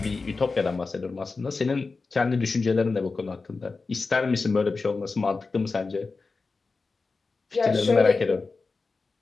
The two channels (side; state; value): right; quieter; 4.1 dB